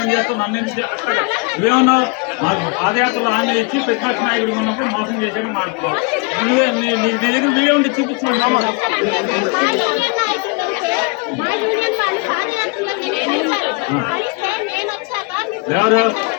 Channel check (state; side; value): quieter; right; 30.7 dB